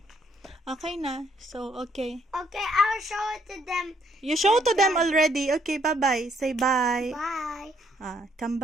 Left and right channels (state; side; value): normal; both; correlation 0.69